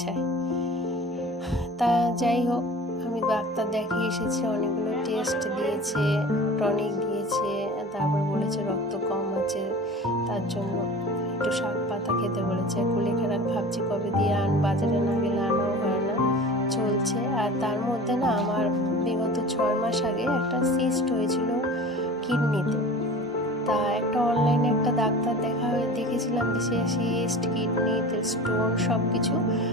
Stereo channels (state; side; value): normal; both; correlation 0.38